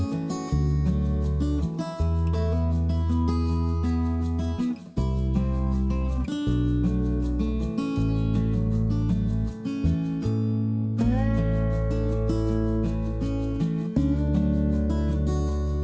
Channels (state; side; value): identical; both; correlation 1.00